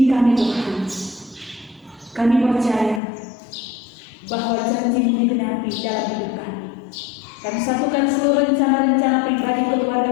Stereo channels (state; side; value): drops out; right; at 3.0 s